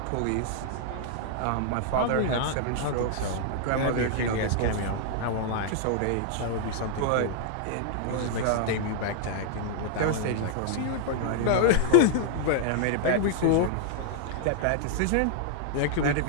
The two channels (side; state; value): both; different; correlation -0.01